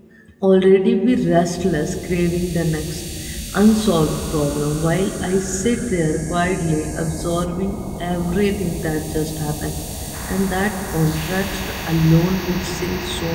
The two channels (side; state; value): both; identical; correlation 1.00